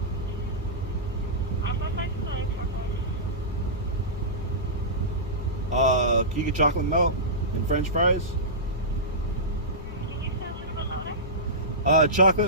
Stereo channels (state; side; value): normal; both; correlation -0.18